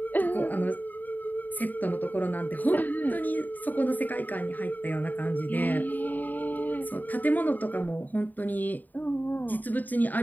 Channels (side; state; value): right; late; 0.086 ms